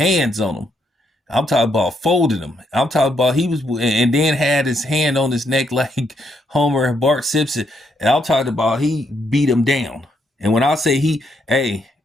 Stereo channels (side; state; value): both; normal; correlation 0.76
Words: on him. I'm talking about folded him. I'm talking about he was, and then had his hand on his neck like Homer and Bart Simpson. And I'm talking about he beat him down. And when I say hey,